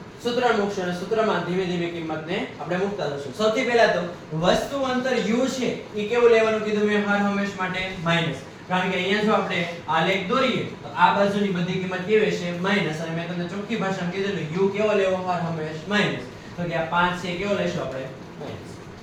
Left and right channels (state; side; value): identical; both; correlation 1.00